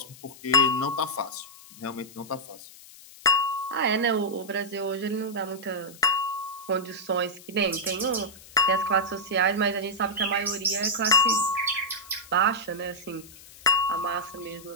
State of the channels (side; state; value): left; noise; hiss, 20 dB below the sound